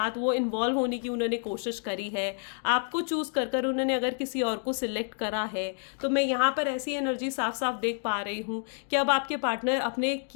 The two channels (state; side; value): silent; right; 58 dB below the other